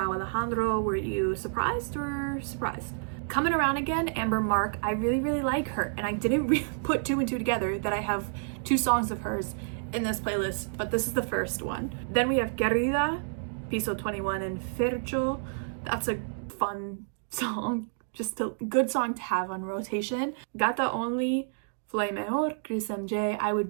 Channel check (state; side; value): silent; left; digital silence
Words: Alejandro. Were you surprised or surprised? Coming Around Again, Amber Mark. I really, really like her, and I didn't really put two and two together that I have two songs of hers in this playlist, but this is the first one. Then we have Querida, Piso 21, and Fercho. That's a fun song, just a good song to have on rotation. Gata Only, Flay Mejor, Chris MJ. I would